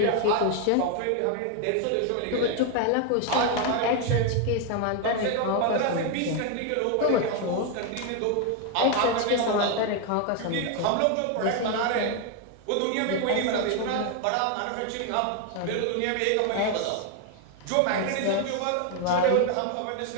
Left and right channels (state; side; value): different; both; correlation 0.01